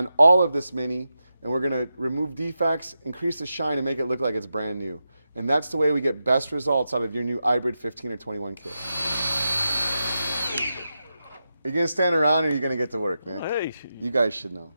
all of this Mini, and we're going to remove defects, increase the shine, and make it look like it's brand new. And that's the way we get best results out of your new iBrid 15 or 21 kit. Are you going to stand around or are you going to get to work, Nick? Hey. You guys should know.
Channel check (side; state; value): both; inverted; correlation -0.89